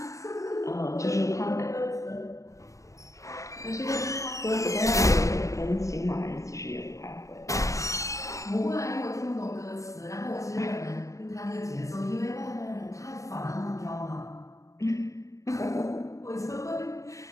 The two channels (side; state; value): right; late; 0.16 ms